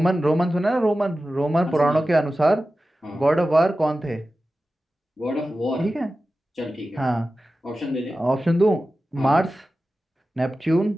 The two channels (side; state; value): both; normal; correlation 0.94